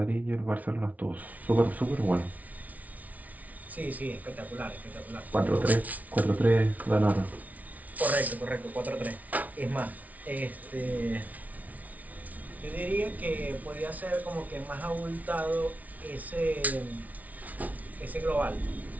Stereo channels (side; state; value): left; late; 0.073 ms